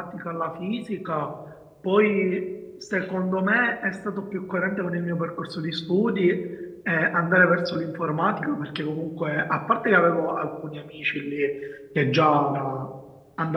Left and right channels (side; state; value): both; identical; correlation 1.00